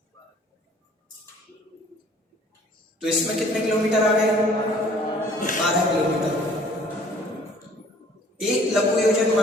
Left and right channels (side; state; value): both; normal; correlation 0.54